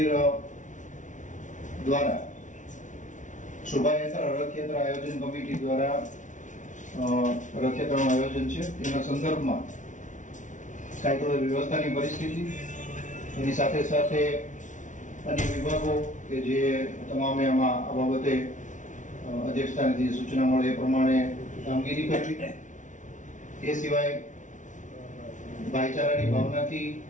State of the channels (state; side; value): late; right; 0.37 ms